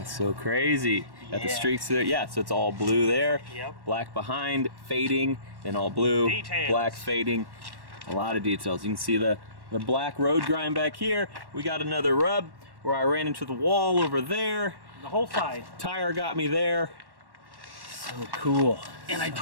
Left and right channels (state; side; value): late; left; 1.1 ms